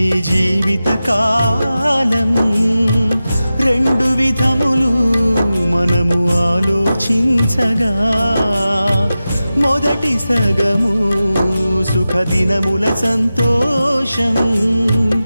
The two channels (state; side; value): inverted; both; correlation -0.94